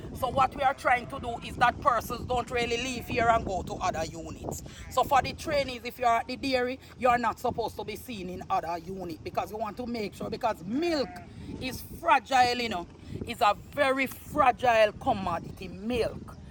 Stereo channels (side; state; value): both; identical; correlation 1.00